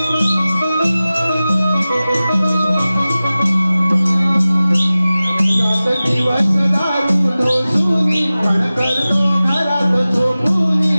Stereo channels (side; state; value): both; inverted; correlation -0.97